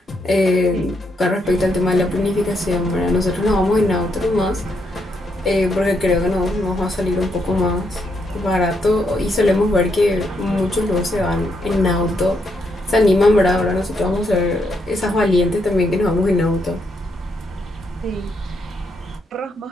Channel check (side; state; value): both; normal; correlation 0.78